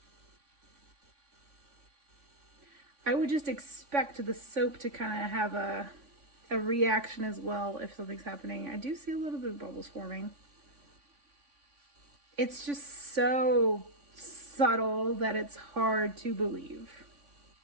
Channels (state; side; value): late; left; 3.5 ms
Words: I would just expect the soap to kind of have a reaction as well if something's happening. I do see a little bit of bubbles forming. It's just so subtle that it's hard to believe.